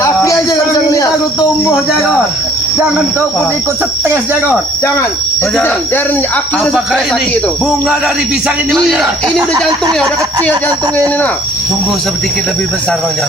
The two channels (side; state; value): both; normal; correlation 0.57